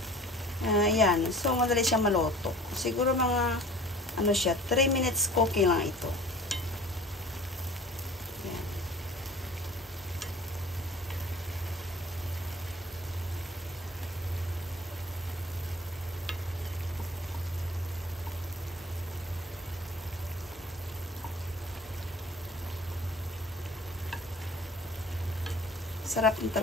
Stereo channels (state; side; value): normal; both; correlation 0.45